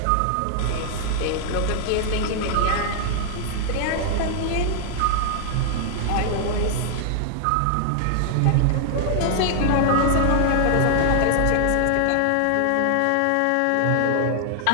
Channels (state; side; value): different; both; correlation 0.00